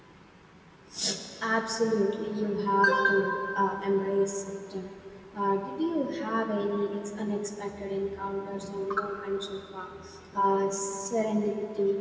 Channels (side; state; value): both; identical; correlation 1.00